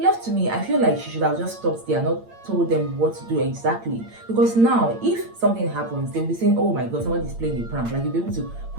to me, I feel like she should have just stopped there, not told them what to do exactly. Because now, if something happens, they'll be saying, oh my god, somebody's playing a prank. Like, you'll be able to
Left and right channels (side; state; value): left; late; 8.8 ms